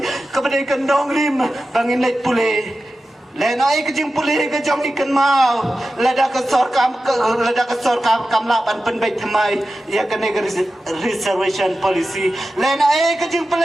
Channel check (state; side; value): normal; both; correlation 0.93